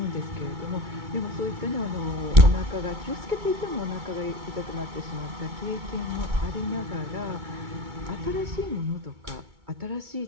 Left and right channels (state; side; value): late; left; 2.2 ms